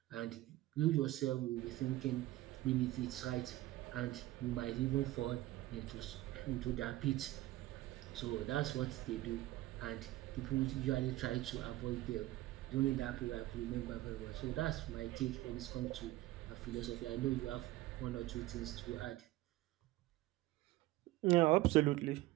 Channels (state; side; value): quieter; left; 17.0 dB